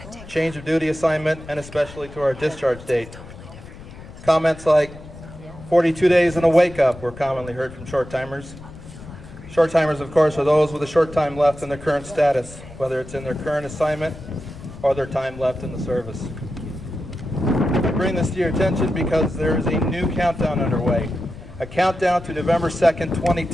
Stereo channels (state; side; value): noise; left; rumble, 16 dB below the sound